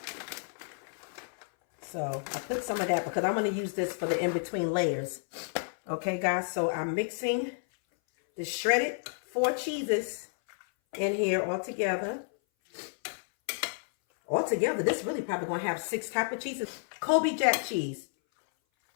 So I put some of that because I'm going to use this for the in-between layers. Okay, guys. So I'm mixing the shredded 4 cheeses in here all together. Altogether, this really probably going to have 6 types of cheeses. Colby Jack cheese.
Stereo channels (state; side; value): silent; right; 57 dB below the other